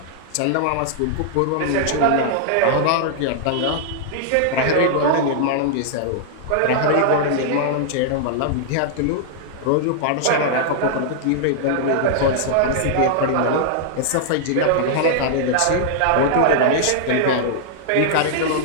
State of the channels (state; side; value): different; both; correlation -0.01